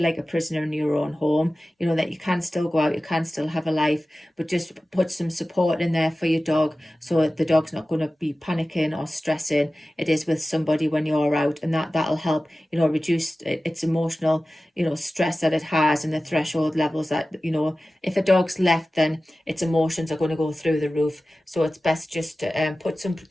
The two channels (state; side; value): normal; both; correlation 0.96